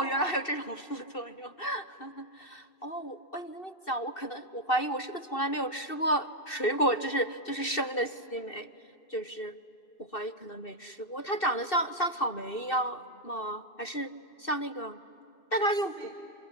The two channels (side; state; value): right; late; 2.7 ms